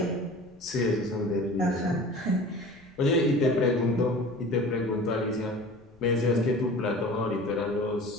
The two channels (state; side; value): noise; left; rumble, 29 dB below the sound